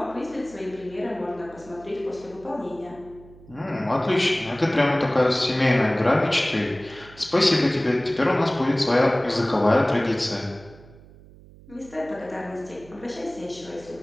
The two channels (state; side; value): noise; right; hum, 22 dB below the sound